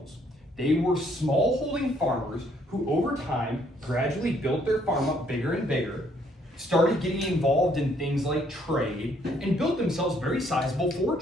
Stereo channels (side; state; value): both; normal; correlation 0.67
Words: They were smallholding farmers who over time gradually built their farm up bigger and bigger, started getting involved in things like trade, and built themselves very sizable